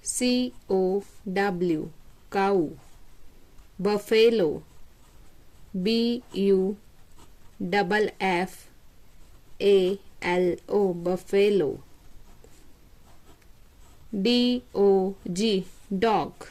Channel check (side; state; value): both; identical; correlation 1.00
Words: C-O-W, cow. Buffalo, B-U-F-F-A-L-O, buffalo. D-O-G, dog.